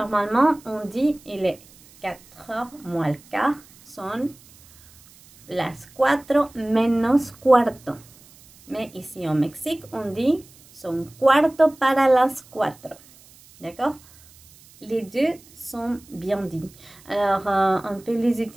on dit il est 4h moins le quart. Son las 4 menos cuarto. Mais ici au Mexique, on dit son cuarto para las 4. D'accord? Les deux sont bien dits. Alors, on peut les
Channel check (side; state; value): right; noise; hiss, 25 dB below the sound